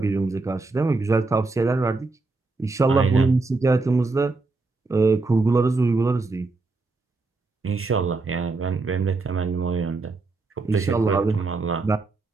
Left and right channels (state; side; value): quieter; left; 3.6 dB